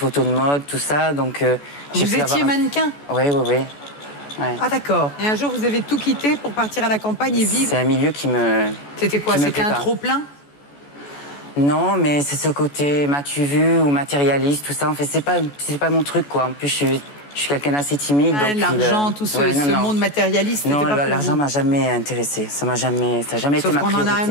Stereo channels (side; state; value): right; late; 14 ms